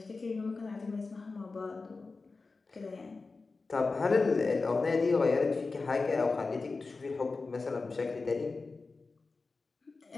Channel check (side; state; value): right; quieter; 4.0 dB